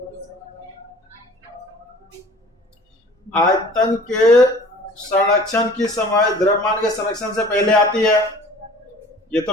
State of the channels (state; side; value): normal; both; correlation 0.46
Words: आयतन के संरक्षण की समय द्रव्यमान के संरक्षण से पहले आती है, ये तो